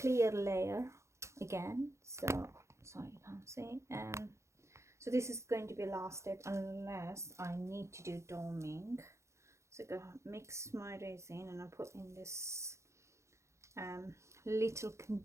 layer again, so sorry you can't see. So this is going to be last step unless I need to do doming. So go mix my resin and I put in this little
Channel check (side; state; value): left; late; 0.14 ms